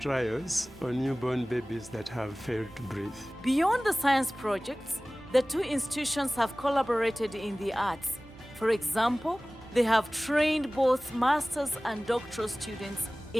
on newborn babies that have failed to breathe. Beyond the science projects, the two institutions have collaborated in the arts. For example, they have trained both master's and doctoral students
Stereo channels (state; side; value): normal; both; correlation 0.98